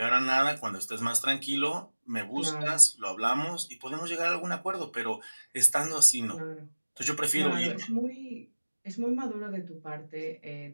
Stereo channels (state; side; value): inverted; both; correlation -1.00